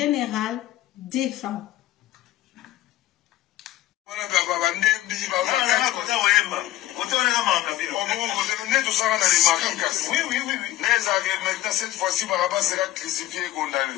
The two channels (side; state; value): right; quieter; 15.0 dB